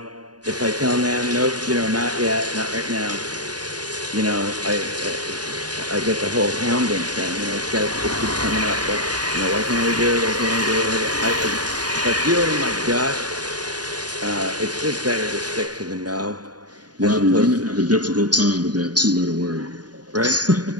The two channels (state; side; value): late; left; 0.69 ms